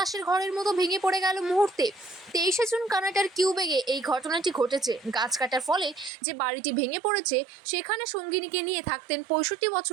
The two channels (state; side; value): drops out; left; at 6.1 s